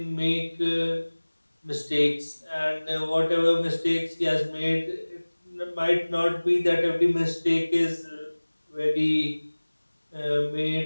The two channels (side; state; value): both; inverted; correlation -1.00